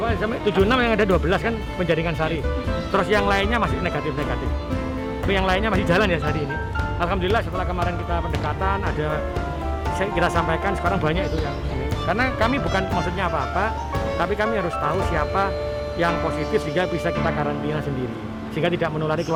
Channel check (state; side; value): identical; both; correlation 1.00